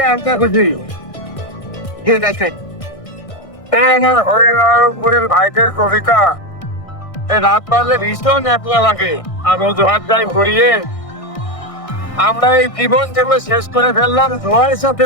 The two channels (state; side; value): late; right; 1.6 ms